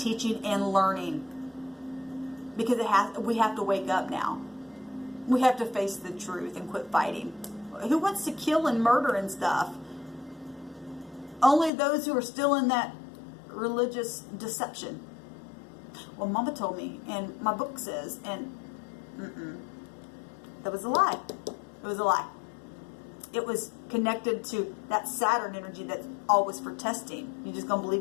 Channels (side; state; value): right; drops out; at 11.7 s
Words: and learning, because we have to wake up now. We have to face the truth and quit fighting. Who wants to kill and murder and stuff? Only those who are still in that religious deception. Well, Mama told me, and my book says, and that was a lie. It was a lie. It was connected to that Saturn energy that's always for testing. You just gonna